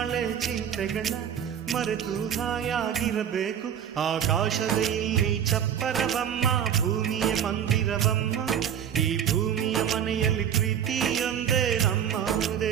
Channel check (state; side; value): quieter; left; 9.0 dB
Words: ಚಿಂತೆಗಳ ಮರೆತು ಹಾಯಾಗಿರಬೇಕು. ಆಕಾಶದ ಇಲ್ಲಿ ಚಪ್ಪರವಮ್ಮ, ಭೂಮಿಯ ಮಂದಿರವಮ್ಮ, ಈ ಭೂಮಿಯ ಮನೆಯಲ್ಲಿ ಪ್ರೀತಿಯೊಂದೇ ನಮ್ಮ